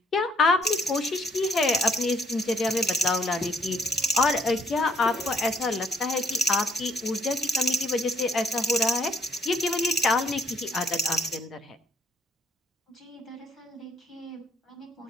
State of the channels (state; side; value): normal; both; correlation 0.66